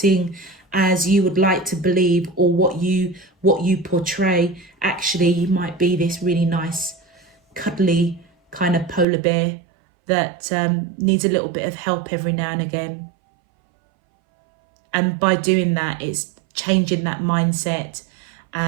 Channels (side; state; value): left; drops out; at 9.1 s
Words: as you would like to believe, or what you portray. Actually, you might be this really nice, cuddly kind of polar bear that needs a little bit of help every now and again. And by doing that, it's changing that mindset